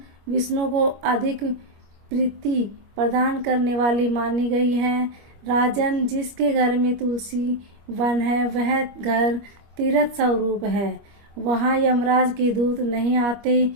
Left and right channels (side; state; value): left; late; 25 ms